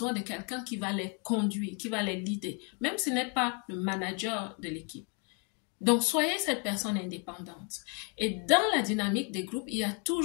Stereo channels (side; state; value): right; quieter; 36.0 dB